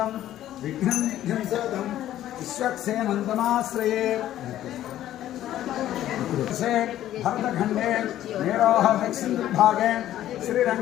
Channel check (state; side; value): quieter; right; 12.7 dB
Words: विघ्नं विघ्नसेदं विश्वक्सेनन्तमाश्रये भरतखण्डे मेरोह दक्षिणभागे